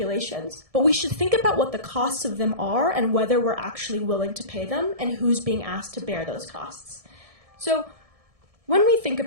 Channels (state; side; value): late; left; 1.7 ms